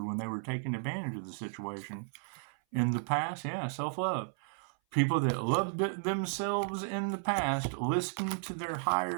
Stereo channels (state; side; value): silent; left; 55 dB below the other